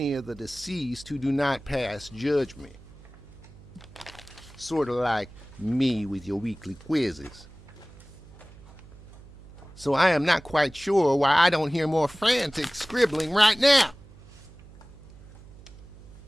of the deceased who do not pass judgment. Sort of like me with your weekly quizzes. So I am not quite sure why I don't hear more frantic scribbling right now.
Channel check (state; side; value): noise; right; hum, 20 dB below the sound